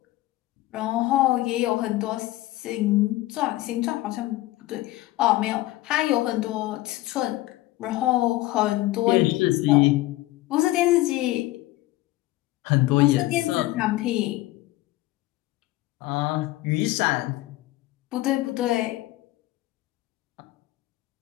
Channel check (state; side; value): quieter; right; 17.7 dB